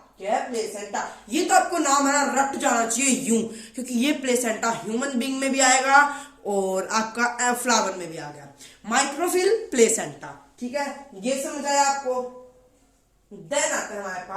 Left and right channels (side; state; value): both; identical; correlation 1.00